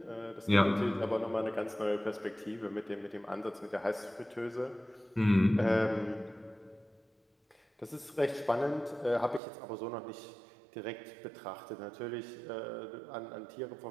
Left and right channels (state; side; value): drops out; left; at 9.4 s